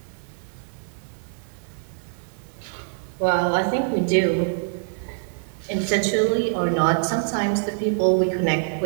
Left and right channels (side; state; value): left; silent; 62 dB below the other